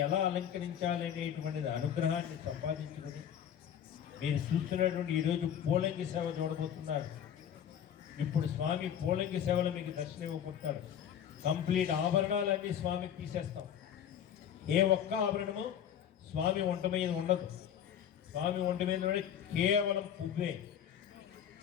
ఎలా అలంకరించాలనేటువంటిది అనుగ్రహాన్ని సంపాదించుకుని మీరు చూస్తున్నటువంటి ఈరోజు పూలంగి సేవ చూడబోతున్నారు. ఇప్పుడు స్వామి పూలంగి సేవలో మీకు దర్శనం ఇవ్వబోతున్నారు. కంప్లీట్ ఆభరణాలన్నీ స్వామికి తీసేస్తాం. ఏ ఒక్క ఆభరణము స్వామి ఒంట మీద ఉండదు. స్వామి ఒంట మీద ఉండే కేవలం పువ్వే.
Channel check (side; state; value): right; quieter; 9.4 dB